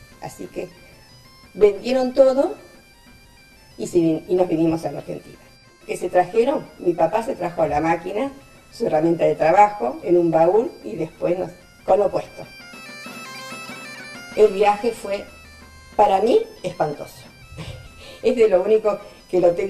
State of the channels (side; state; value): both; identical; correlation 1.00